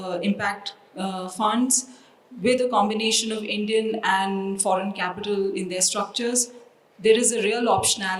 impact funds with a combination of Indian and foreign capital in their structures, there is a real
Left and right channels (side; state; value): both; identical; correlation 1.00